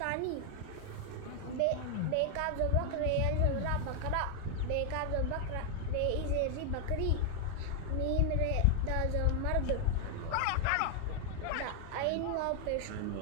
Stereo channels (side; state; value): both; different; correlation 0.00